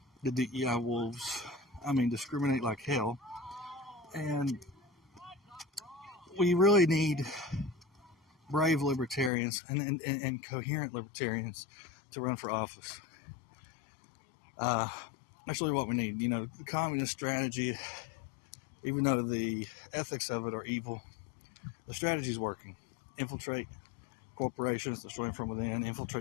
the DEI wolves. I mean, discriminate like hell. And we really need brave libertarians and coherent libertarians to run for office. That's really what we need. You know, the communist strategy, even though the ethics of it are evil, the strategy is working. Infiltrate corporations, destroy them from within.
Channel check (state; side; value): drops out; right; at 9.3 s